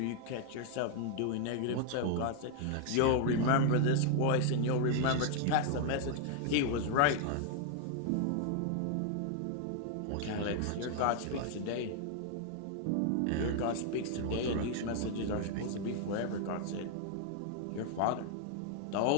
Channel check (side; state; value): both; different; correlation 0.00